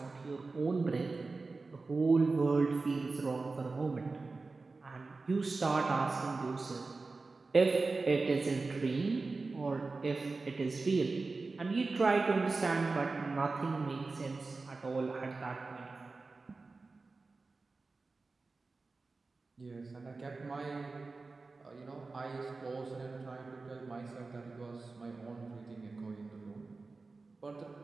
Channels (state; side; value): quieter; left; 3.8 dB